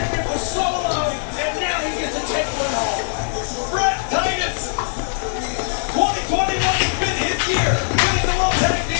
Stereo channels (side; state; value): right; silent; digital silence